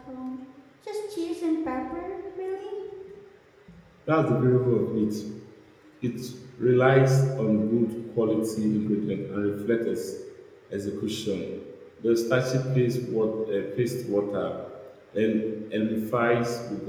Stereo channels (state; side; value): identical; both; correlation 1.00